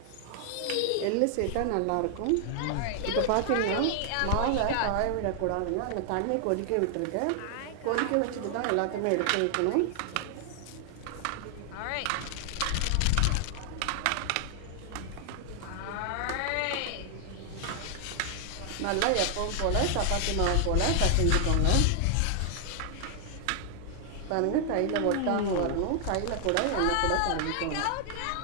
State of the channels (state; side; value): different; both; correlation 0.00